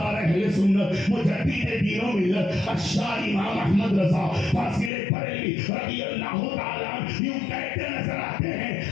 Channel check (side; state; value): right; drops out; at 4.9 s